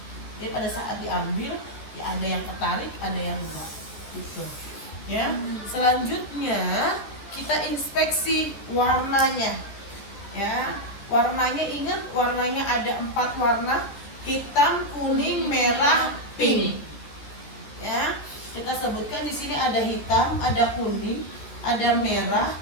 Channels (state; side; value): late; right; 14 ms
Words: Jadi pada saat diambil, ya ada yang ketarik, ada yang enggak, gitu. Ya. Selanjutnya kita inspeksi warnanya. Ya, warnanya, ingat warnanya ada 4 warna: hitam, kuning, merah, pink. Ya, kita sebutkan di sini ada hitam, ada kuning, ada merah,